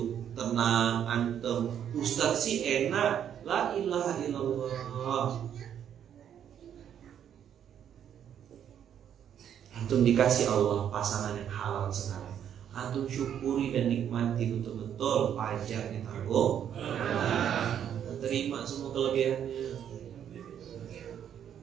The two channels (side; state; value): left; quieter; 9.3 dB